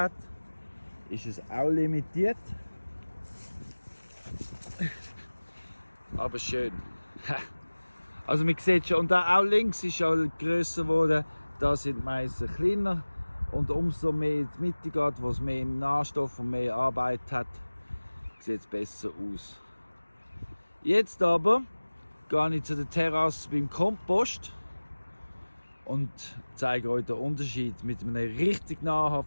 ist es auch limitiert. aber schön. Also man sieht schon, und da auch links ist ja grösser geworden, da sind die Meisen kleiner. Und umso mehr in die Mitte geht, wo es mehr Nährstoff und mehr Arbeit hat, sieht es besser aus. Jetzt aber gehe ich zu der Terrasse beim Kompost und zeige euch den Unterschied mit einem richtig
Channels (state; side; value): inverted; both; correlation -1.00